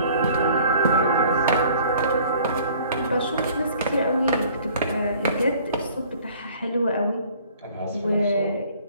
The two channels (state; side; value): inverted; both; correlation -0.53